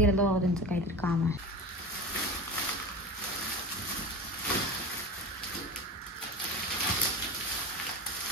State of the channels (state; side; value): normal; both; correlation 0.30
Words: बाबा, त्यांचं काहीतरी काम आहे.